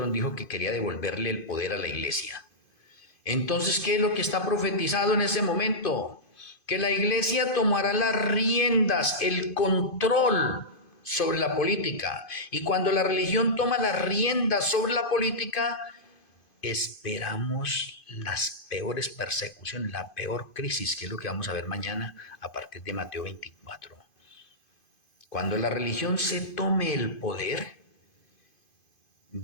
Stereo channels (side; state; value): right; late; 2.5 ms